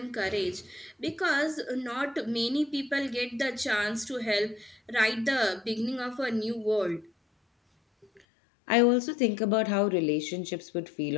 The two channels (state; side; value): drops out; right; at 8.2 s